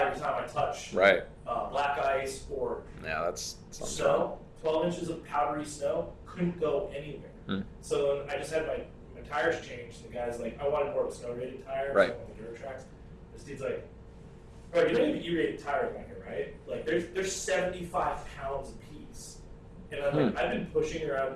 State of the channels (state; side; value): identical; both; correlation 1.00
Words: every time I touch Right. black ice or that's something. snow. 12 inches of powdery snow, couldn't go anywhere. So then I just had my tires changed. The guy's like, I wanted more of a snow-rated tire. Right. So I went with the Duratrax. This dude's like, bro, you don't have E-rated tires back here, right? Like, they're 75 pounds a piece. And I'm like, I've been pushing